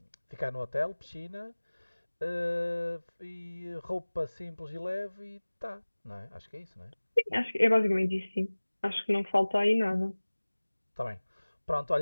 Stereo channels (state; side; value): inverted; both; correlation -1.00